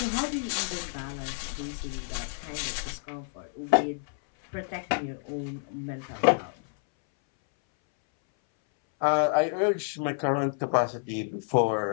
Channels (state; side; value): silent; right; 59 dB below the other